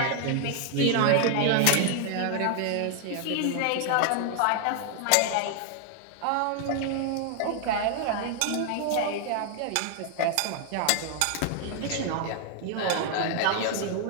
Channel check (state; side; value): different; both; correlation 0.00